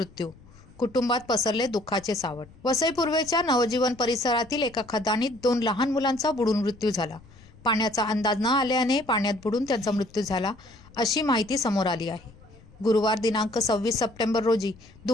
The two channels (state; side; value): noise; left; rumble, 24 dB below the sound